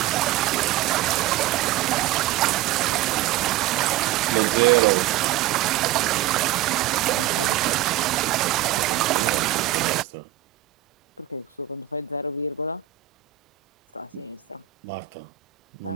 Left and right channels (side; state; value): left; quieter; 14.1 dB